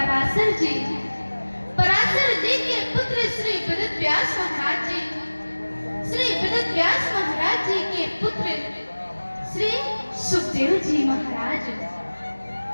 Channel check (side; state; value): both; inverted; correlation -1.00